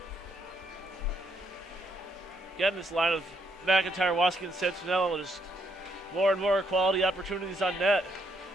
Getting this line of McIntyre, Waskey, and Santinello, just more and more quality opportunities on net.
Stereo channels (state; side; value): normal; both; correlation 0.74